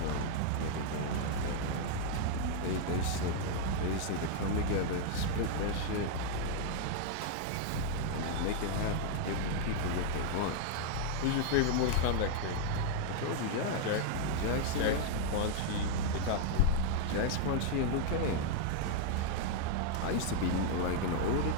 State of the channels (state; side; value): different; both; correlation -0.01